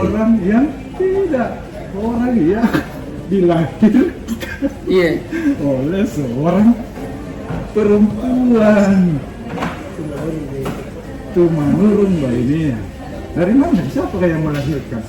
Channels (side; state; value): both; identical; correlation 1.00